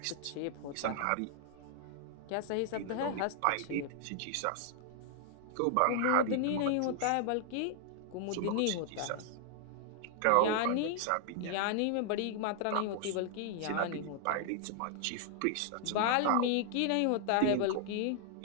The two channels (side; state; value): both; different; correlation 0.00